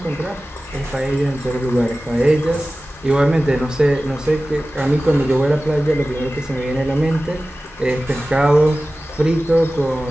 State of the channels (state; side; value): normal; both; correlation 0.96